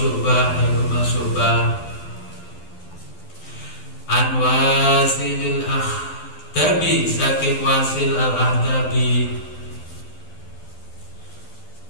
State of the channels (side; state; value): right; late; 12 ms